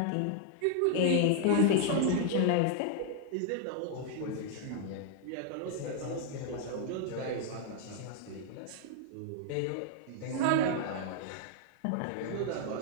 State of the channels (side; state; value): both; different; correlation 0.00